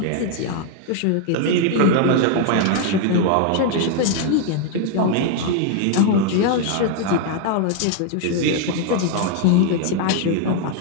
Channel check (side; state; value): both; different; correlation 0.00